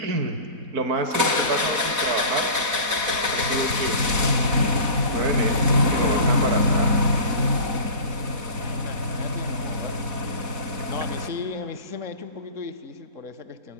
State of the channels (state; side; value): late; left; 4.1 ms